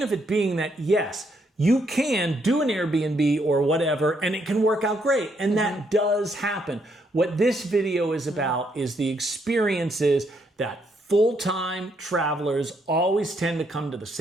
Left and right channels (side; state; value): both; normal; correlation 0.74